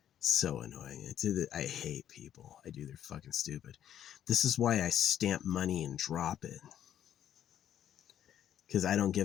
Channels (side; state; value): right; quieter; 10.4 dB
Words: So annoying. I hate people. I do. They're fucking stupid. This is why I stamp money and drop it. Because I don't